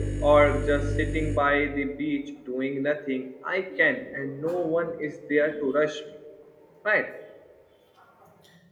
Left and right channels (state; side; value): identical; both; correlation 1.00